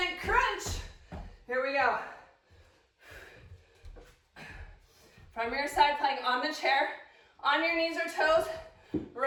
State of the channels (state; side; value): identical; both; correlation 1.00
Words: crunch. Here we go. from your side plank on the chair, on your knees or toes,